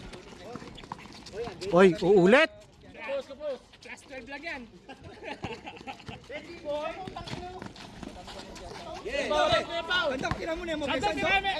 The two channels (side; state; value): both; identical; correlation 1.00